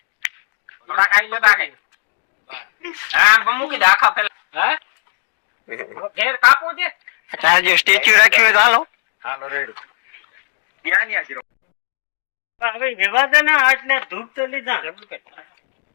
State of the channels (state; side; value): silent; right; digital silence